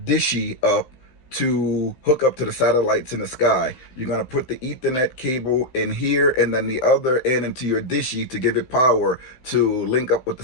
dishy up to hook up to the satellites in the sky. You're going to put the Ethernet cable in here and then the other end into your dishy to give it power to link up with the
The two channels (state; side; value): late; right; 15 ms